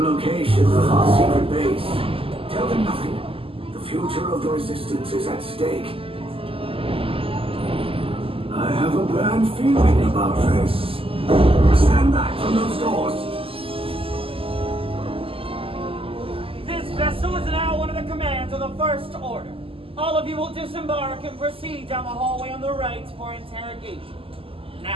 of our secret base. Tell them nothing. The future of the Resistance is at stake. I have a bad feeling about this. Stand back from those doors. This vessel is now under the command of the First Order. All of you will disembark and proceed down the hallway on the right for interrogation.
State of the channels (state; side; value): late; left; 0.26 ms